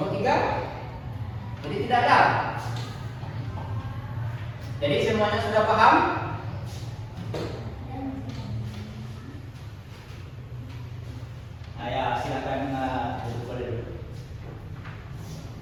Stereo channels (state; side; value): identical; both; correlation 1.00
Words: 3? Jadi tidak ada. Jadi semuanya sudah paham? Nah, ya, silakan duduk dulu.